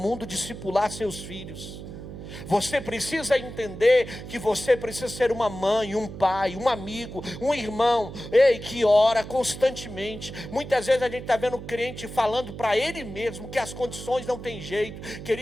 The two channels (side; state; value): right; noise; hum, 11 dB below the sound